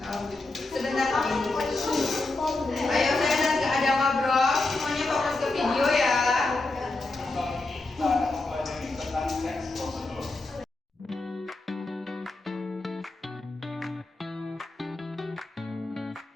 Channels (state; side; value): quieter; right; 3.1 dB